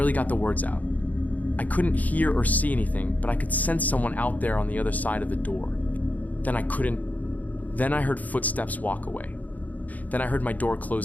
got the words out. I couldn't hear or see anything, but I could sense someone out there on the other side of the door. Then I heard footsteps walk away. Then I heard my door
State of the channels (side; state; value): right; late; 0.078 ms